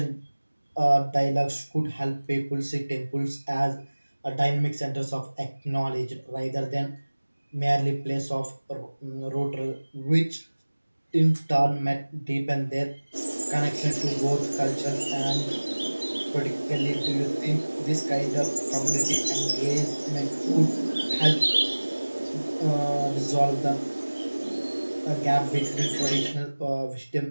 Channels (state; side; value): inverted; both; correlation -1.00